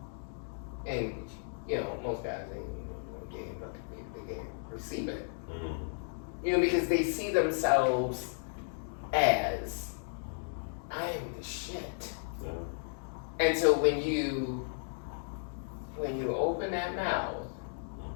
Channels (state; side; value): silent; right; digital silence